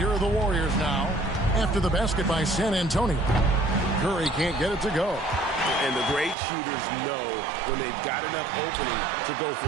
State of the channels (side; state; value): left; drops out; at 6.4 s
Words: are the Warriors now. After the basket by San Antonio. Curry can't get it to go. And the great shooters know when they've got enough opening to go for